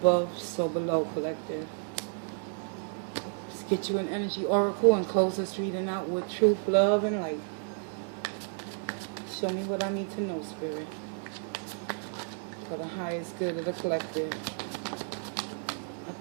so below, collective. Let's get you an energy oracle and close this reading out with truth, love, and light. Show me what I need to know, Spirit, for the highest good of the collective. I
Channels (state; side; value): silent; left; 57 dB below the other